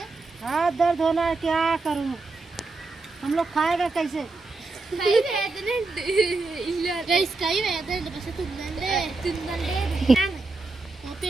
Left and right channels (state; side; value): quieter; left; 3.5 dB